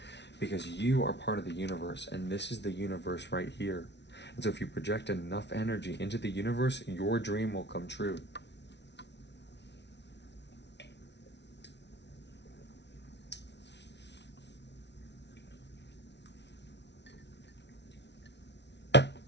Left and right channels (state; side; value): late; right; 0.50 ms